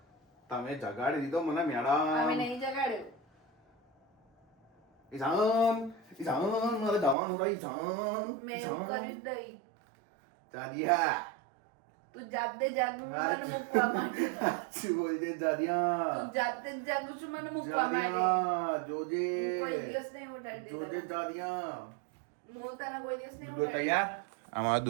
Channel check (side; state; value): left; drops out; at 7.2 s